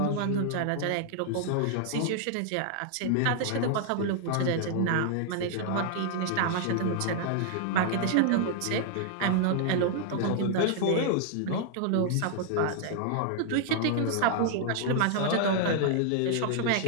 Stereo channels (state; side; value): different; both; correlation 0.00